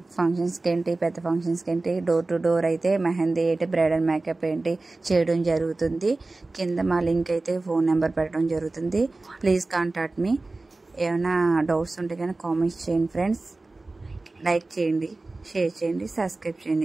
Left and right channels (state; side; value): quieter; left; 3.2 dB